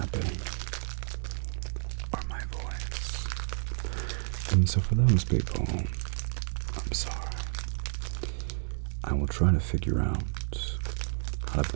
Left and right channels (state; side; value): silent; left; digital silence